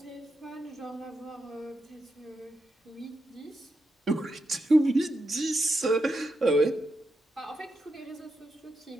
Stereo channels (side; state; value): both; normal; correlation 0.85